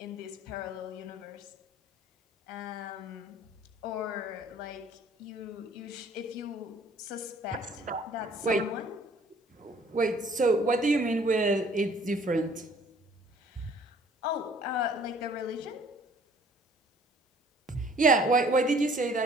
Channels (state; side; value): normal; both; correlation 0.56